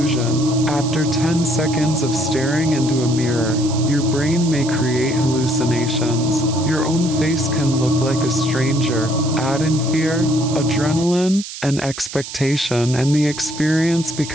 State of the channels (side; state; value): right; noise; hiss, 11 dB below the sound